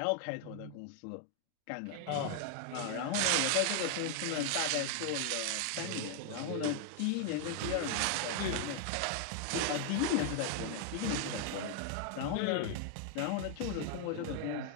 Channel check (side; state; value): both; different; correlation 0.00